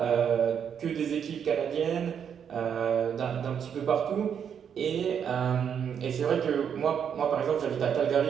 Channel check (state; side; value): quieter; left; 7.9 dB